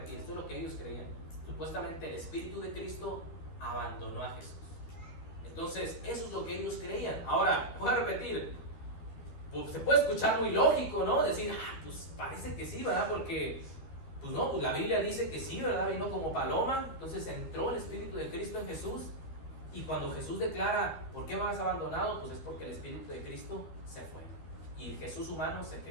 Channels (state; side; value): late; right; 13 ms